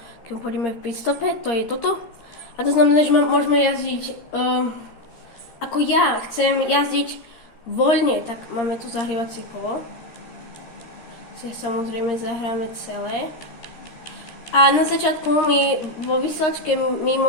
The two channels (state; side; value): late; right; 13 ms